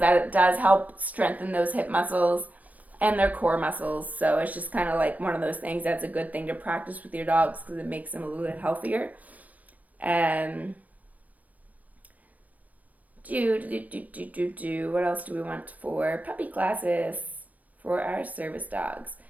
that it does help strengthen those hip muscles and their core muscles. So it's just kind of like one of those things that's a good thing to practice with your dogs because it makes them a little bit healthier. What else do we want for puppy classes for our service dogs?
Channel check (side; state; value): left; late; 0.073 ms